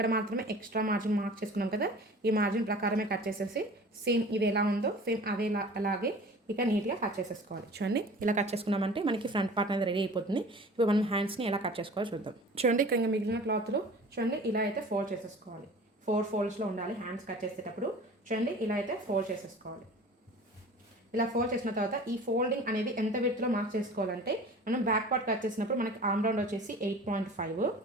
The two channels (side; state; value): both; normal; correlation 0.42